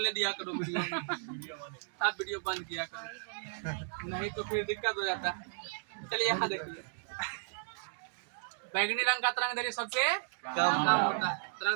दिया करो वीडियो में, तब वीडियो बंद किया करो, नहीं तो फिर दिक्कत हो जाता है। चलिए यहाँ देखिए, बैगनी रंग का तरंग दैर्घ्य सबसे कम होता है।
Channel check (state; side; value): silent; left; digital silence